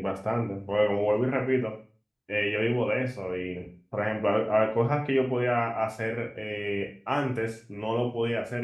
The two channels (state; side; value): identical; both; correlation 1.00